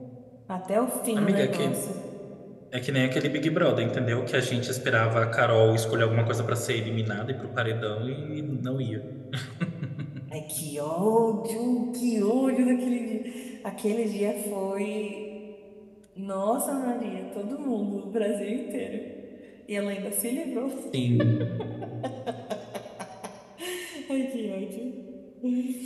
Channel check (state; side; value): identical; both; correlation 1.00